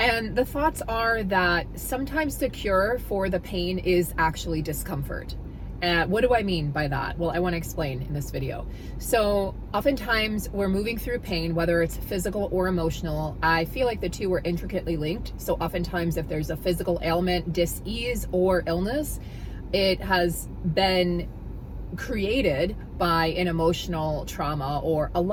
the thoughts are that sometimes the cure for the pain is actually discomfort. What do I mean by that? Well, I want to explain in this video. So oftentimes we're moving through pain, whether it's physical or emotional. I feel like the two are intricately linked. So oftentimes if there's a physical ailment, dis-ease, or illness, it has been created by an emotional trauma or a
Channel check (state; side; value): identical; both; correlation 1.00